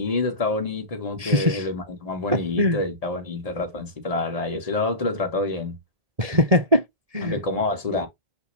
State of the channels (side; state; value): left; late; 1.7 ms